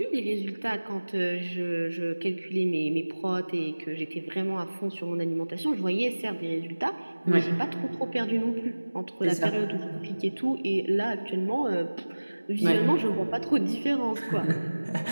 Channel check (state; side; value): inverted; both; correlation -1.00